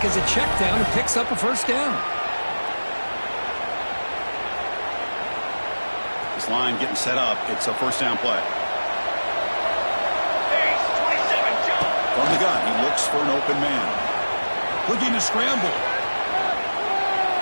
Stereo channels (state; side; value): inverted; both; correlation -1.00